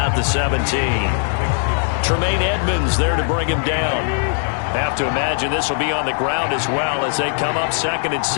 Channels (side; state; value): right; silent; digital silence